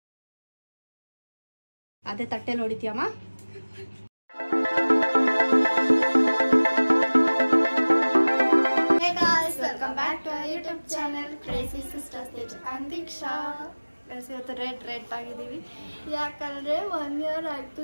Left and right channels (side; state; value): both; inverted; correlation -1.00